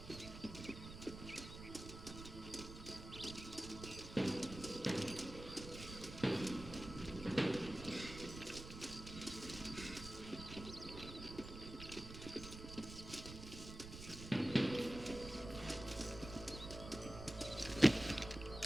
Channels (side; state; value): right; noise; rumble, 11 dB below the sound